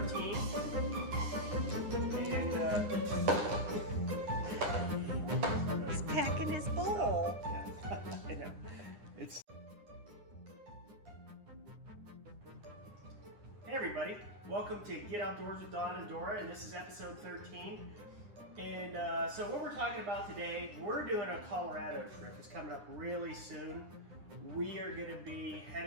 And he's packing his bowl. Yeah. I know. Hey everybody, welcome to Get Outdoors with Don and Dora, and this is episode 13. And so what we're talking about today, we're doing a Colorado trip. It's coming up really soon. We are going to be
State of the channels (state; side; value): late; left; 9.8 ms